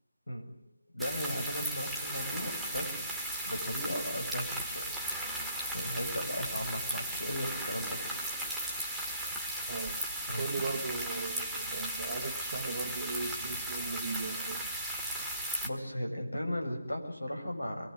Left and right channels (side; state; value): both; inverted; correlation -0.60